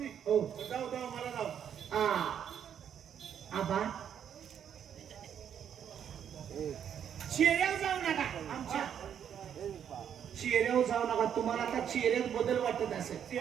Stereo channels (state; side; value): quieter; left; 8.8 dB